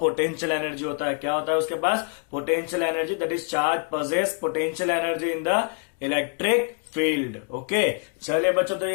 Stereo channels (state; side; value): quieter; right; 38.4 dB